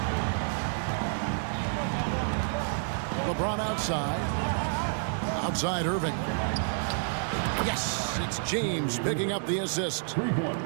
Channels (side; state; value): left; silent; digital silence